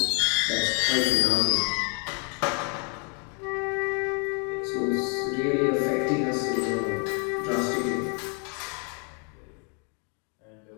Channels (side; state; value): right; quieter; 37.5 dB